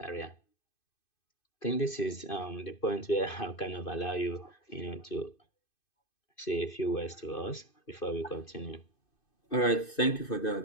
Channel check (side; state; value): right; late; 2.5 ms